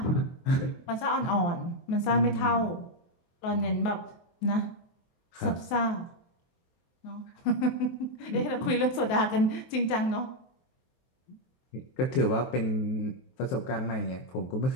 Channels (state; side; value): late; right; 23 ms